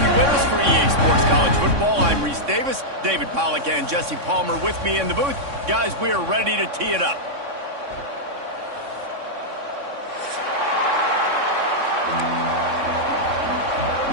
with us for EA Sports College Football. I'm Reese Davis, David Pollack and Jesse Palmer with me in the booth. Guys, we are ready to tee it up.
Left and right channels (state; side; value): late; left; 3.6 ms